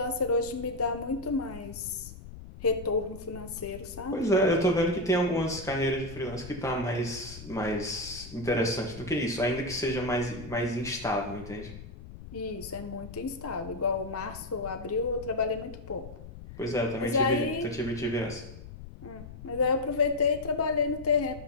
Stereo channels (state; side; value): noise; left; rumble, 14 dB below the sound